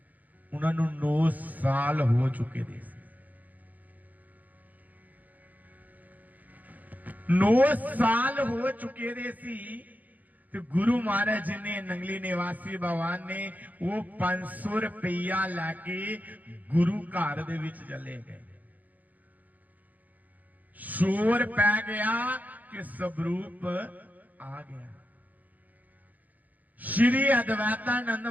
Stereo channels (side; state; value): left; late; 0.081 ms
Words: उन्हां नू 9 साल हो चुके थे। 9 साल हो चुके दे सी तो गुरु महाराज जी ने नंगली निवासी भगवान ने वो 500 रुपया लैके गुरु घर दे विच चले गए। शोर पै गया कि स्वरूप आ गया। श्री अद्वैतानंद